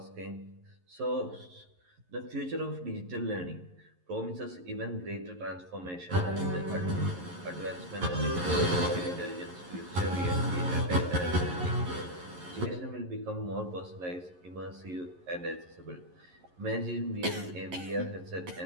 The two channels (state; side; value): late; left; 11 ms